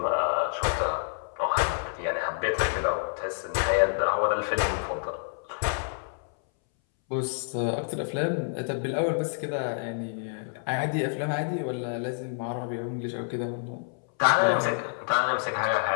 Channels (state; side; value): silent; right; 59 dB below the other